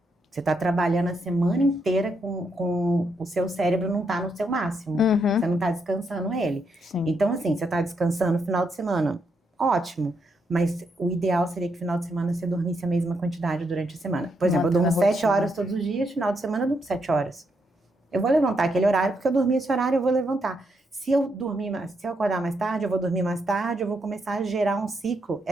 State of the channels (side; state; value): both; normal; correlation 0.79